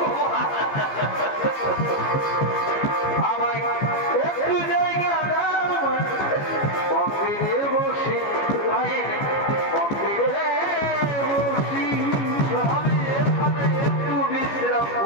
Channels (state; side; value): late; right; 15 ms